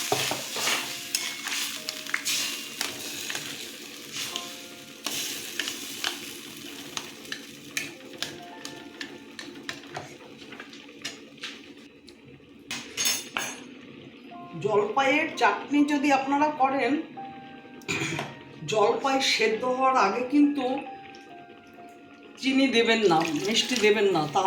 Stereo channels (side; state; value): both; identical; correlation 1.00